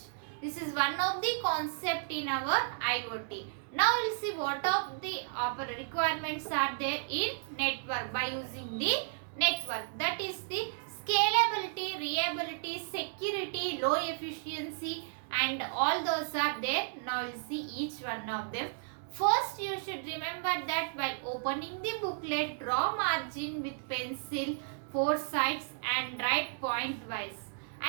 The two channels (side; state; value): left; silent; digital silence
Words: This is one of the concept in our IoT. Now we will see what of the requirements are there in network by using the network. That is the scalability, reliability, security, low efficiency and all those are there. Now we will see each one of them. First you should remember that while opening the booklet, draw margin with pencil 4 sides and write point wise